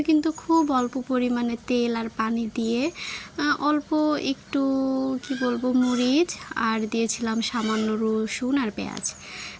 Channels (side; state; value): both; identical; correlation 1.00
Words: কিন্তু খুব অল্প পরিমাণে তেল আর পানি দিয়ে অল্প একটু কি বলবো মরিচ আর দিয়েছিলাম সামান্য রসুন আর পেঁয়াজ।